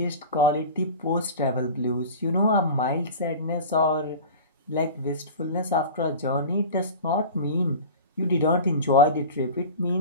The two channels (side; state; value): both; inverted; correlation -0.33